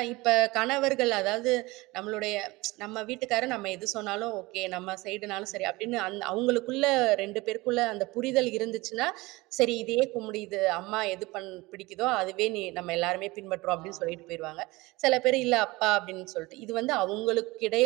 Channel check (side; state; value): left; quieter; 21.8 dB